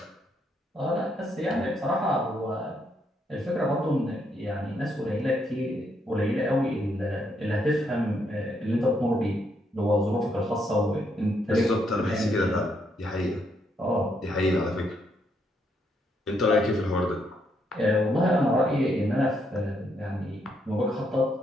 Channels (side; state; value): both; normal; correlation 0.75